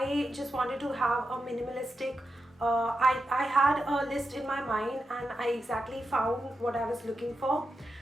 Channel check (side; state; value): both; normal; correlation 0.88